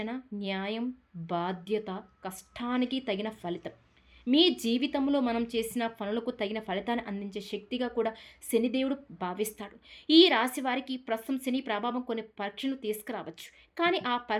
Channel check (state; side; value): identical; both; correlation 1.00